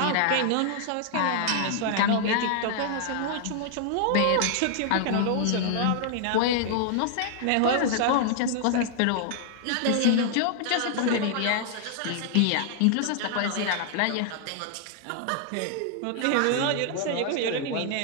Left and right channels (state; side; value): different; both; correlation 0.00